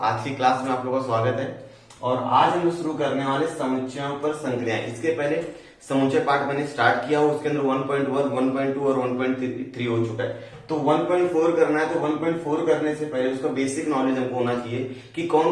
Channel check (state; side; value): identical; both; correlation 1.00